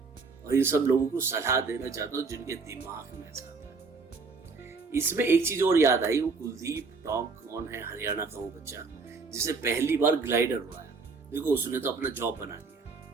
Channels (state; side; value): quieter; left; 4.5 dB